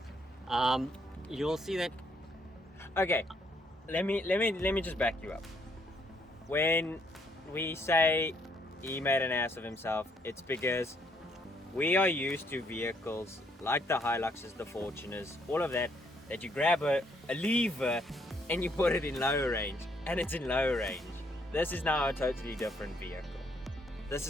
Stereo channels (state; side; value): normal; both; correlation 0.70